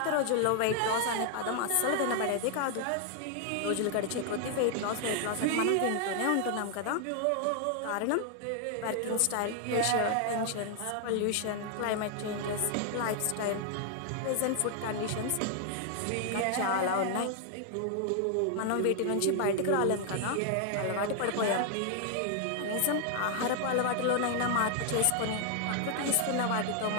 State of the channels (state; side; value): different; both; correlation 0.00